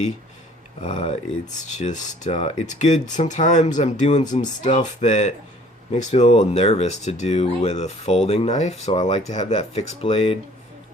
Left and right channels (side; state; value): both; normal; correlation 0.54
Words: It's just, it's good. Sometimes I'm doing some stuff that makes me a little nervous to do with a folding knife, so I like to have that fixed blade.